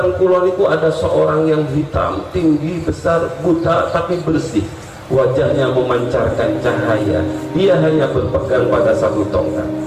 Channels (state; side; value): identical; both; correlation 1.00